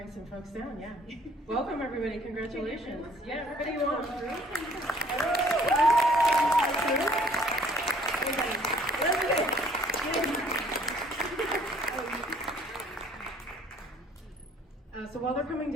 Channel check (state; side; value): normal; both; correlation 0.58